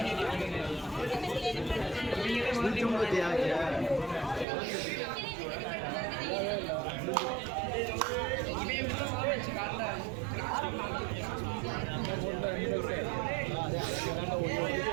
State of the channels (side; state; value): left; drops out; at 4.5 s